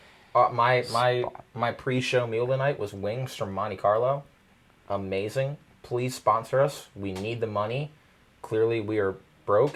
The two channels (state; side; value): identical; both; correlation 1.00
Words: my pre-show meal tonight was wings from Monte Carlo. Amazing. Please sponsor us. We need the money. Clearly, we are broke